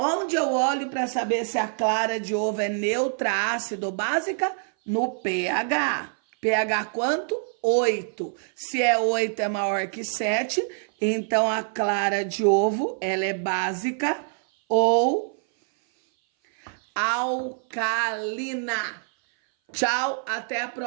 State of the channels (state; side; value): silent; left; 58 dB below the other